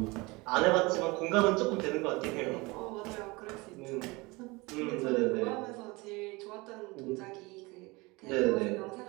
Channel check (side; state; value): left; quieter; 24.3 dB